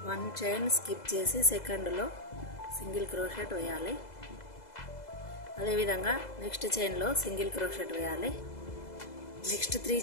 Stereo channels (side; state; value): right; late; 2.0 ms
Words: 1 చైన్ స్కిప్ చేసి సెకండ్లో సింగిల్ క్రోషెట్ వేయాలి. అదేవిధంగా నెక్స్ట్ చైన్లో సింగిల్ క్రోషెట్ వేయాలి. నెక్స్ట్ 3